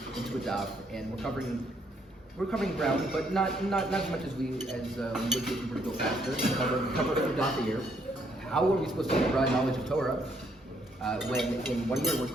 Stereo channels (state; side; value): normal; both; correlation 0.71